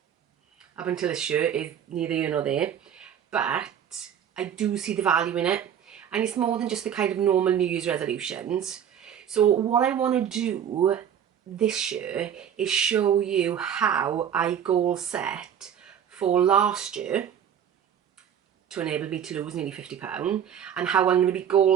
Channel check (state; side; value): quieter; left; 8.9 dB